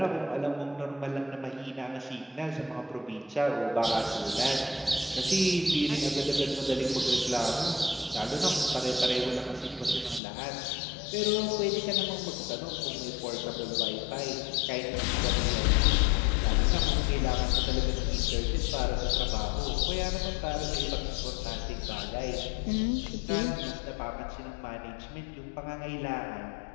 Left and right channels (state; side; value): drops out; right; at 10.2 s